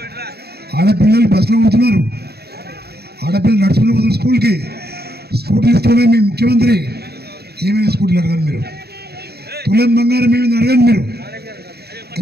ఆడపిల్లలు బస్సులో పోతున్నారు, ఆడపిల్లలు నడుచుకుని పోతున్నారు స్కూల్కి. స్కూటీలు ఇస్తూనే మీ ముఖ్యమంత్రి ఏమైనా స్కూటీలు అడగండి మీరు, తులం బంగారం ఏమైనా అడగండి మీరు.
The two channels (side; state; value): left; late; 0.47 ms